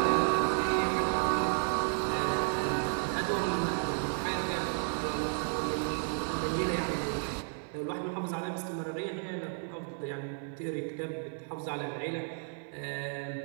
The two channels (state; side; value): silent; left; digital silence